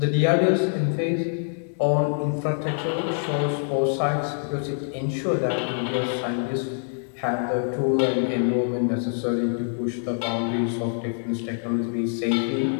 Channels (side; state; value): right; silent; 61 dB below the other